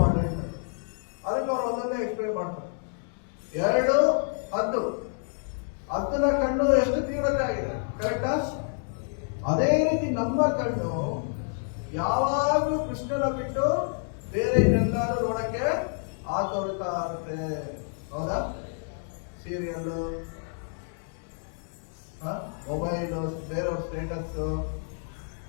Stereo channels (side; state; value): right; silent; digital silence